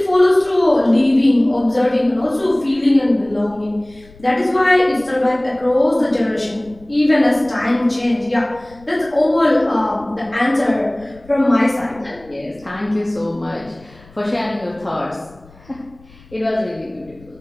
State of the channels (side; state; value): left; noise; rumble, 25 dB below the sound